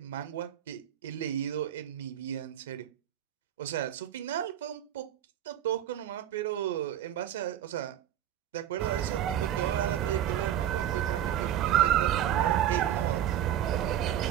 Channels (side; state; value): left; quieter; 11.0 dB